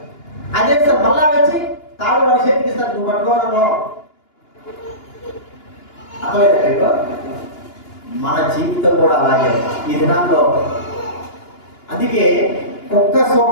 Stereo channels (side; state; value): right; late; 2.9 ms